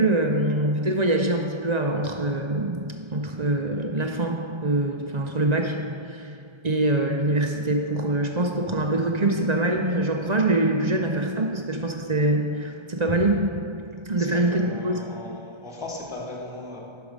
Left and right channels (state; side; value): late; left; 1.9 ms